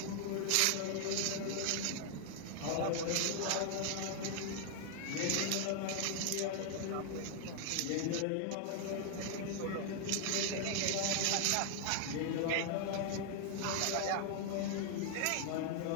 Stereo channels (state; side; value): different; both; correlation 0.00